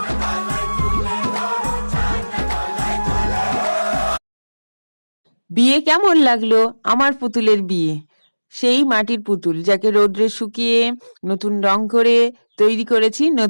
বিয়ে কেমন লাগলো? আমার পুতুলের বিয়ে, সেই মাটির পুতুল যাকে রোদ্রে শুকিয়ে নতুন রং করে তৈরি করেছি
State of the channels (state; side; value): inverted; both; correlation -1.00